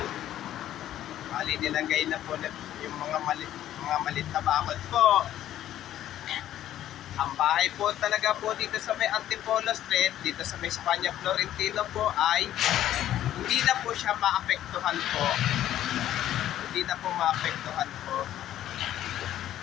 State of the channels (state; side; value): quieter; right; 12.2 dB